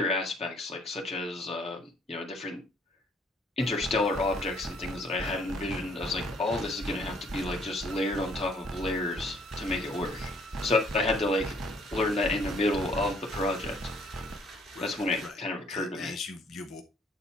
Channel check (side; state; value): both; normal; correlation 0.62